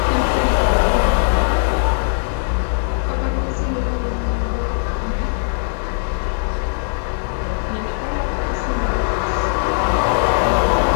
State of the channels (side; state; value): right; silent; digital silence